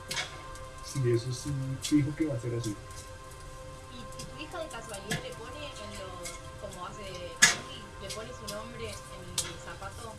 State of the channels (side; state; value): both; identical; correlation 1.00